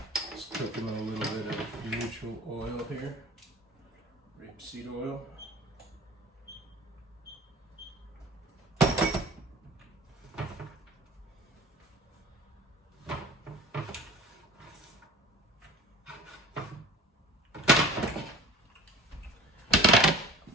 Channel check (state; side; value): normal; both; correlation 0.43